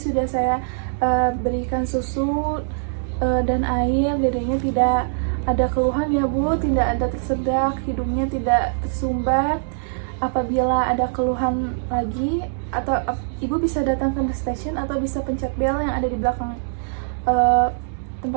saya berikan susu dan air. Dedenya tidak ada keluhan ya Bu, tidak ada tersedak, hidungnya tidak tersumbat. Apabila ada keluhan lagi, atau Ibu bisa datang ke nurse station atau bisa pencet bel yang ada di belakang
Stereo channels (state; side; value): silent; left; digital silence